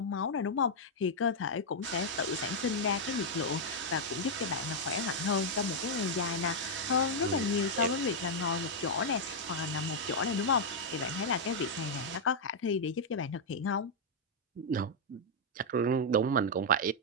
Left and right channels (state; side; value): normal; both; correlation -0.04